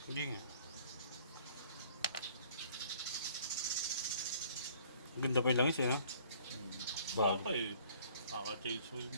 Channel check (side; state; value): both; inverted; correlation -0.56